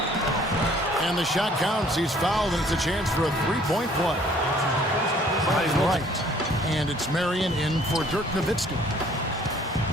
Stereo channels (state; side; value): normal; both; correlation 0.58